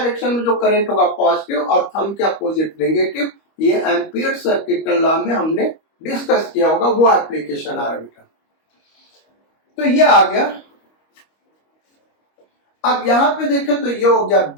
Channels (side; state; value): right; late; 25 ms